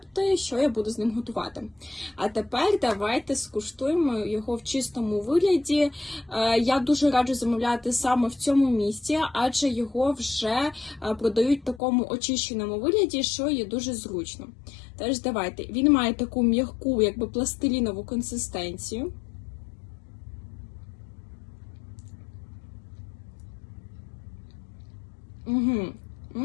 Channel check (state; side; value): drops out; right; at 11.8 s